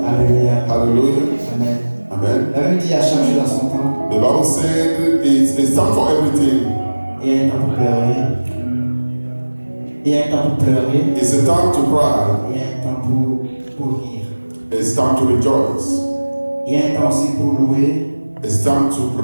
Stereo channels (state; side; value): inverted; both; correlation -1.00